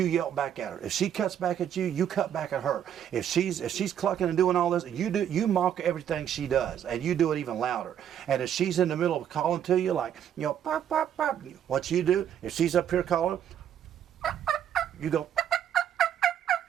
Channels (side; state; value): left; quieter; 9.7 dB